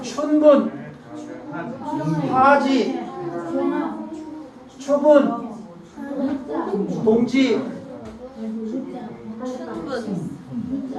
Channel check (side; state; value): both; identical; correlation 1.00